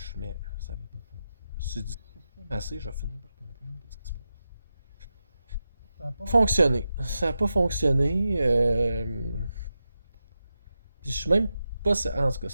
Ça va pas faire. Si je fume assez, je vais finir par comprendre ce qui se passe. Ça n'a pas fonctionné. Ça n'a pas fonctionné. Puis je suis même pas. En tout cas,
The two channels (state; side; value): inverted; both; correlation -0.90